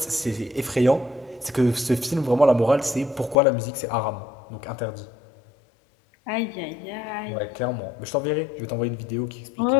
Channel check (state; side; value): drops out; right; at 3.4 s